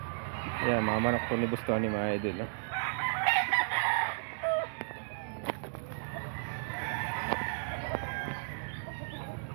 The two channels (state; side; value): silent; left; digital silence